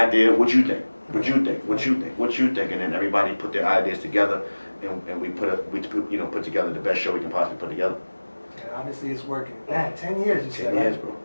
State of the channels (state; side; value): inverted; both; correlation -1.00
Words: What you think? What you think? What you think? What you think? And then everybody put their ideas together, and we put together the best show we can possibly put together. And obviously it's working. Man, 10 years you said, 10 right? years, bro.